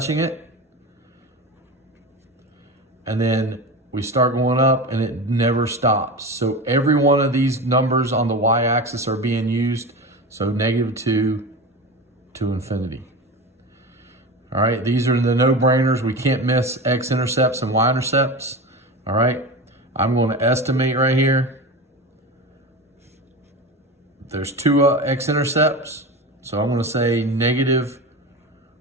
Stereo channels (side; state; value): both; normal; correlation 0.27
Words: it. And then we start going up and it never stops. So every one of these numbers on the y-axis are being used. So -2 to infinity. All right, these are the no-brainers. We can't miss x-intercepts and y-intercepts. All right, I'm going to estimate right here. There's two x-intercepts. So I'm going to say